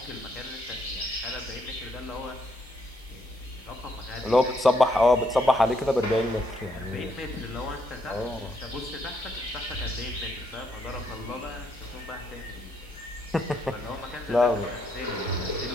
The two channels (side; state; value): both; normal; correlation 0.74